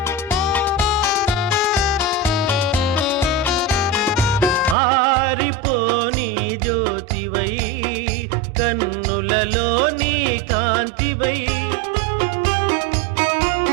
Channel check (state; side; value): drops out; left; at 4.8 s